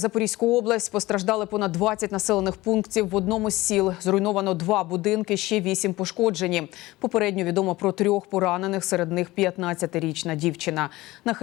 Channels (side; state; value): right; quieter; 19.0 dB